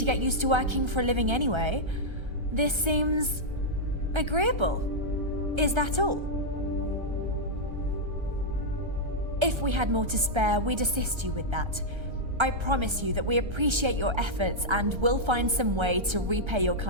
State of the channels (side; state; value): left; late; 1.3 ms